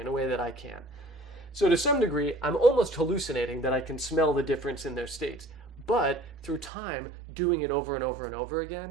a way that I can't. So to some degree, I'm almost hallucinating that I can smell the difference in their states. But through time, doing it over and over and over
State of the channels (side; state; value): left; drops out; at 6.7 s